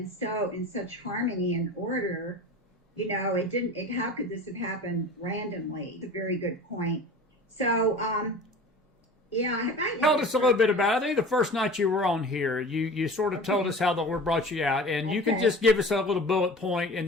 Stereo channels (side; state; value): both; normal; correlation 0.38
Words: so in such harmony and order? How could this have happened randomly? It's a very good point. So tell us a little bit about it. I think the first night you were on here, you sort of told us how the Lord brought you out, and you can just give us a little bullet point, and